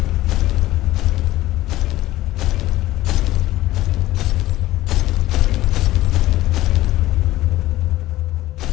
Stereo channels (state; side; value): quieter; right; 16.1 dB